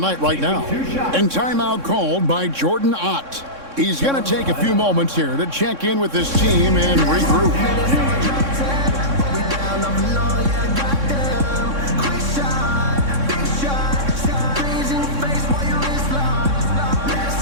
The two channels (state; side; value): late; left; 3.6 ms